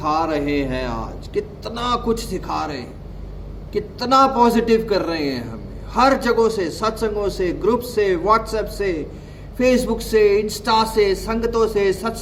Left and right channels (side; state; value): both; identical; correlation 1.00